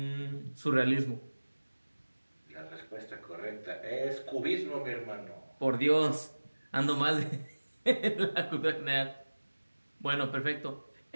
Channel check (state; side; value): inverted; both; correlation -1.00